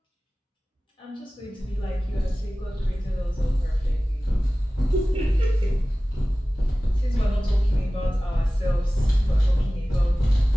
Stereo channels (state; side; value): normal; both; correlation 0.97